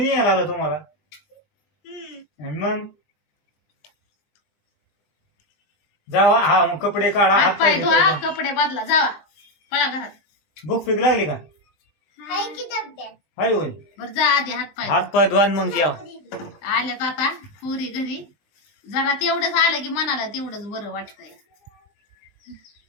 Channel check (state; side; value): late; right; 20 ms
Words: नाही आलो तुम्हाला. आणि मग जावा हा मग कपडे काढा हात पाय धुवा धुवा. कपडे बदला जावा पळा घरात भूक पीक लागली का हाय की डब्यात हाय होय बर जा आधी हात पाय हात पाय धुवा आणि मग जेवा. आल्यात आता पुरी घरी जरा तेवढंच आलं की मनाला तेवढंच बरं वाटतंय